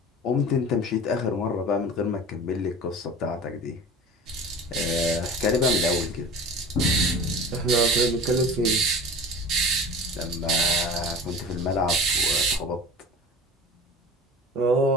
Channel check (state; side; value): normal; both; correlation 0.37